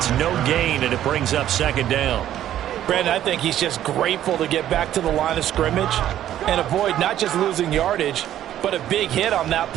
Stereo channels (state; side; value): quieter; left; 11.8 dB